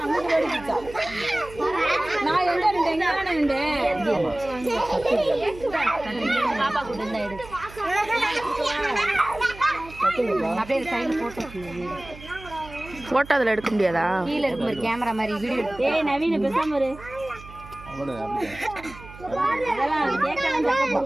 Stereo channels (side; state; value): right; noise; hum, 17 dB below the sound